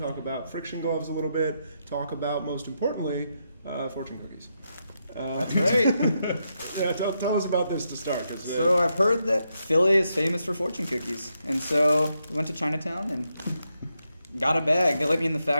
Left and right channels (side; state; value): both; inverted; correlation -0.82